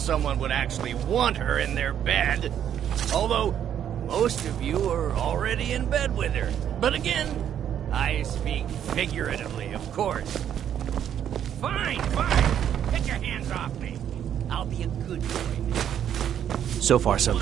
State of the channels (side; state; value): left; quieter; 9.7 dB